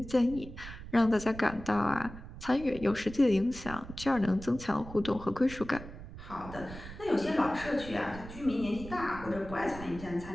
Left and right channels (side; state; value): right; noise; rumble, 13 dB below the sound